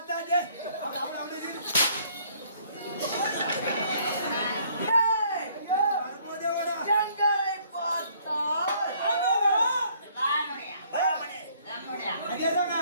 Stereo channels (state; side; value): inverted; both; correlation -0.62